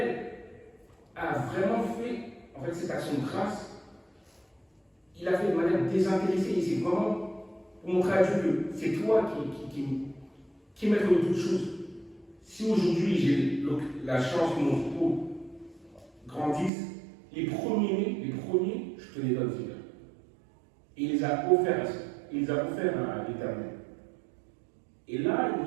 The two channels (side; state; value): left; drops out; at 16.7 s